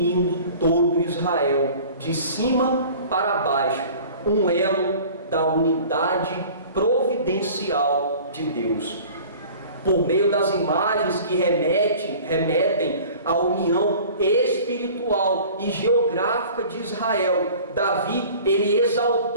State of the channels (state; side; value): inverted; both; correlation -0.45